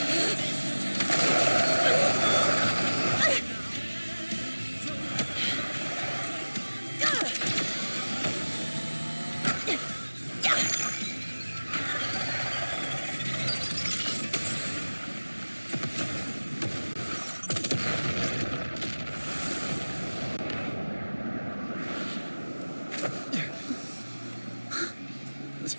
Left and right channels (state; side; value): inverted; both; correlation -1.00